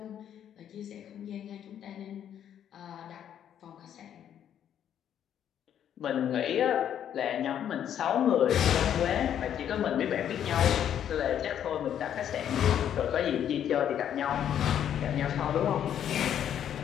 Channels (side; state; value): right; quieter; 9.8 dB